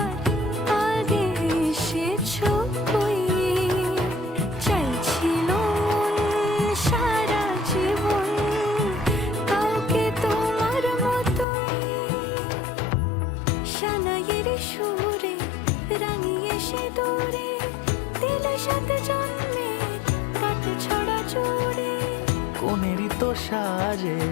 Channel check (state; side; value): drops out; right; at 11.5 s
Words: আগে এসেছো কই, চাইছিল মন সারা জীবন কাউকে তোমার মতোই। সানাইয়ের সুরে রাঙিয়ে সে দূরে, দিলে 7 জন্মের কাট ছড়া জোড়ে। কোনেরই তো সাজে